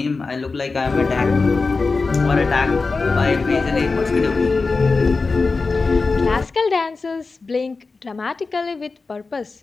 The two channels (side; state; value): right; quieter; 4.1 dB